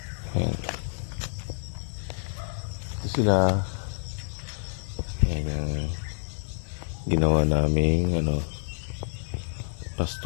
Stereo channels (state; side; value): silent; right; digital silence